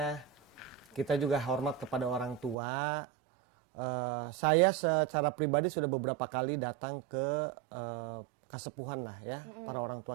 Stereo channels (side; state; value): left; drops out; at 2.6 s